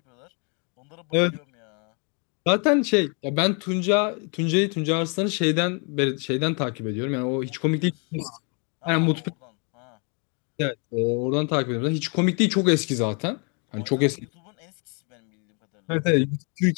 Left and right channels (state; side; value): quieter; right; 36.2 dB